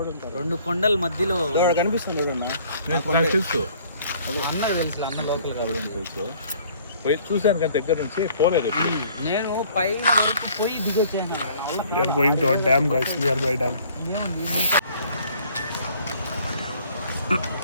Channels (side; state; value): both; inverted; correlation -0.57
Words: 2 కొండల మధ్యలో కనిపిస్తుంది చూడన్నా. తెలుసు అన్నకు తెలుసు, అన్న లోకల్ కాదు తెలుసు. పోయి చూశాను కానీ దగ్గర నుంచి పోలేదు. నేను పైన పోయి దిగొచ్చాను. We are going to a dam guys, nearby dam.